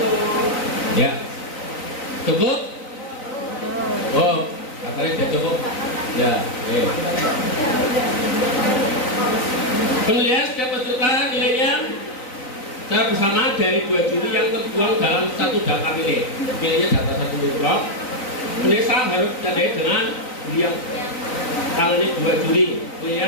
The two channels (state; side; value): late; right; 3.9 ms